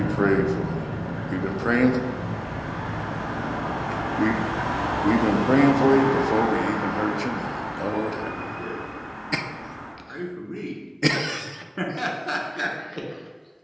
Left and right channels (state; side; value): identical; both; correlation 1.00